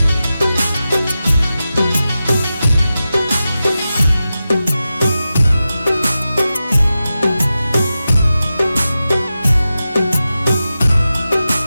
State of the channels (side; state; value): both; inverted; correlation -0.92